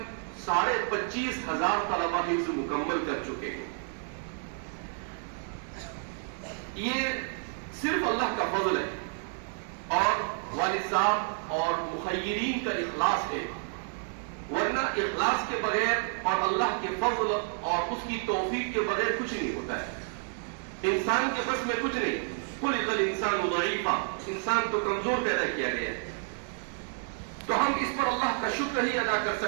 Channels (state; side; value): silent; left; 58 dB below the other